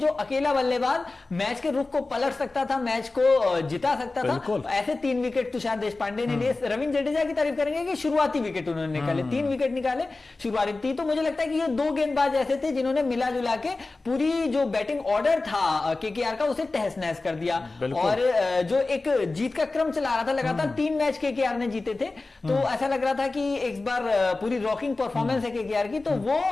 अकेला बल्लेबाज मैच के रुख को पलट सकता था, मैच को जिता सकता था। ऐसे 3 विकेट तुषार देशपांडे ने लिए। रविंद्र जडेजा तारीफ करेंगे कि शुरुआती विकेट उन्होंने निकाले, 3 विकेट निकाले शुरुआती। तो मुझे लगता है कि ये 2 गेंदबाज ऐसे थे जिन्होंने मिला जुला के पूरी जो बैटिंग ऑर्डर था केकेआर का उसे तहस नहस कर दिया। और जो एक जीत का क्रम चला रहा था, लगातार 3 मैच केकेआर ने जीते थे, तो ऐसा लग रहा था कि एक बार पूरी रॉकिंग परफॉर्मेंस है केकेआर की, तो वो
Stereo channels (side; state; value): right; quieter; 3.4 dB